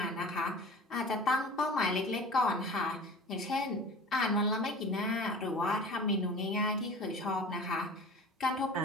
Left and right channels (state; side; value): normal; both; correlation 0.39